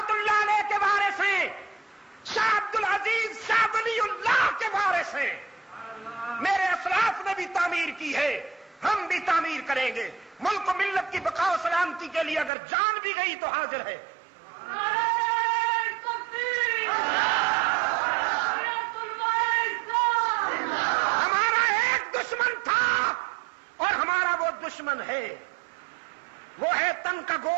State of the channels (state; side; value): drops out; left; at 12.5 s